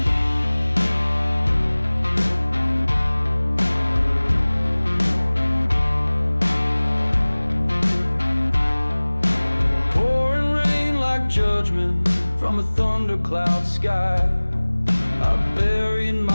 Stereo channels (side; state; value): both; inverted; correlation -1.00